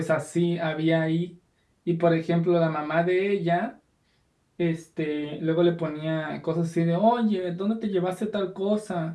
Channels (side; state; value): both; identical; correlation 1.00